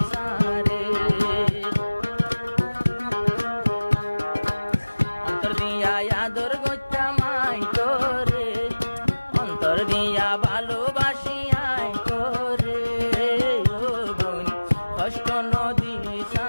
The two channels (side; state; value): both; inverted; correlation -1.00